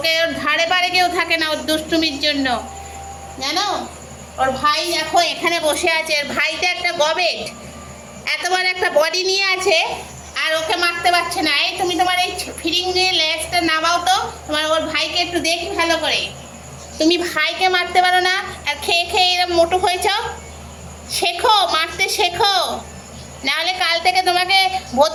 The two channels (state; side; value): identical; both; correlation 1.00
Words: ওর ধারে পারে কেউ থাকে না ওর দুষ্টুমির জন্য, জানো? ওর ভাই দেখো এখানে বসে আছে, ওর ভাইটা একটা গবেট, এত বড় একটা বডি নিয়ে আছে, আর ওকে মারতে পারছে না। এই তুমি তোমার এই ফিরিং নিয়ে লেজটা নামাও তো, তোমার ওর ভাইকে একটু দেখি ভালো করে। তুমি ভাইকে মারতে পারো না, আর খেয়ে খেয়ে এরকম মোটু হয়েছ। শেখো, মারতে শেখো, নাহলে কাল থেকে তোমাকে